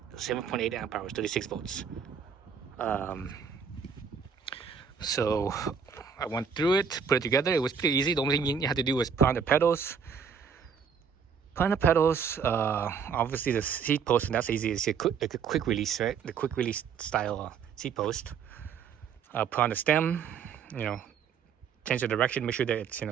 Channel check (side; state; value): left; quieter; 6.7 dB